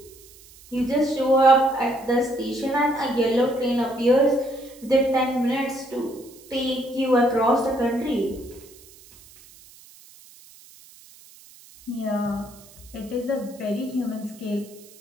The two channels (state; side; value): noise; right; hiss, 23 dB below the sound